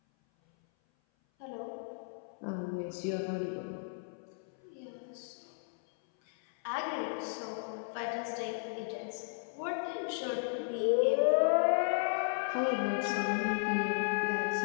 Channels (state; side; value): silent; right; 55 dB below the other